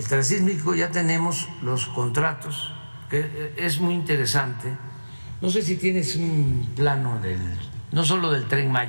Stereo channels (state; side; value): inverted; both; correlation -1.00